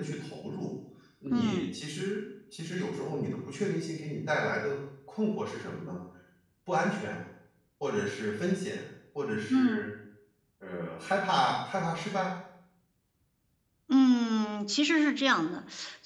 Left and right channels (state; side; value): identical; both; correlation 1.00